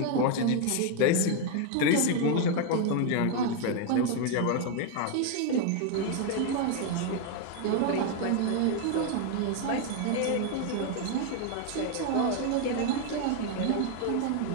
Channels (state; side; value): different; both; correlation 0.01